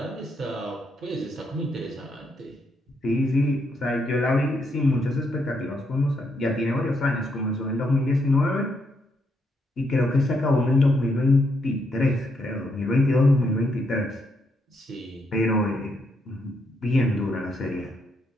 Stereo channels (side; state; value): both; normal; correlation 0.77